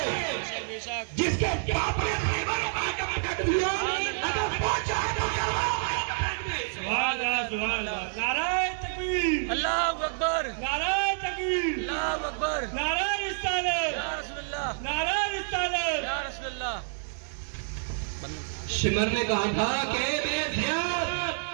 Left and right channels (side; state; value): left; silent; 59 dB below the other